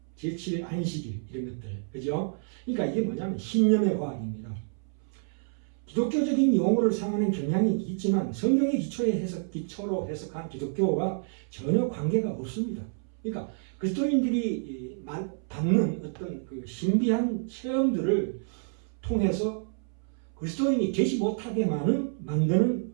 제7일 안식일 이런 것들, 그죠? 그러니까 이게 뭐냐면 신념의 과학입니다. 기독교적인 용어를 사용하는 경향이 있지만 성경의 기초로 해석한 기독교와 전혀 관계가 없습니다. 그러니까 그리스도인들이 받는 어떤 그 신비한 체험들을 통해서 그리스도인이 되지 못하게 만드는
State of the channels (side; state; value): left; silent; 59 dB below the other